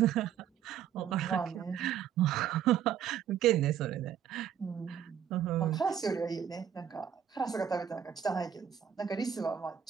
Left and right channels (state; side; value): quieter; left; 8.9 dB